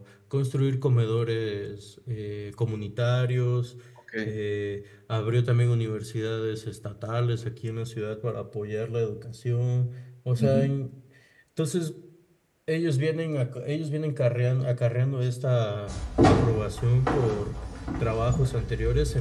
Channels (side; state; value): both; identical; correlation 1.00